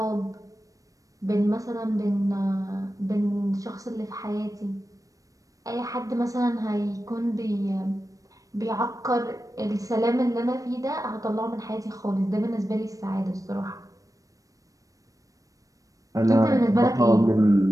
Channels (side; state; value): left; late; 0.16 ms